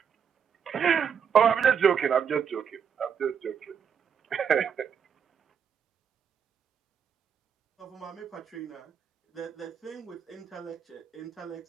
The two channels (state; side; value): quieter; left; 7.3 dB